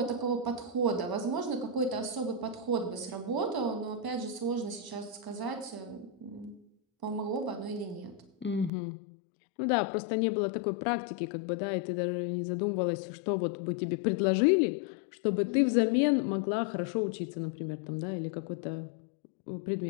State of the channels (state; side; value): drops out; right; at 8.7 s